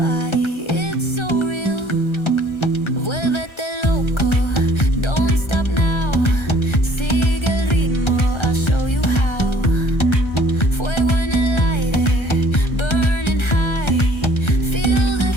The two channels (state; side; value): late; right; 1.3 ms